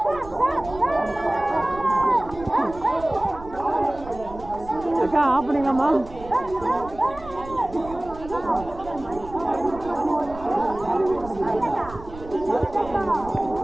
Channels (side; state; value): right; noise; rumble, 16 dB below the sound